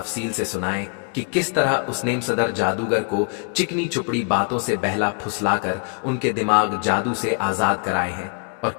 से सुनाए कि किस तरह उस नेम सदर जादूगर को चिकनी चुपड़ी बातों से बहला फुसलाकर उनके दिमाग जादू से आजाद कराए हैं और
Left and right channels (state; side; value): quieter; right; 37.2 dB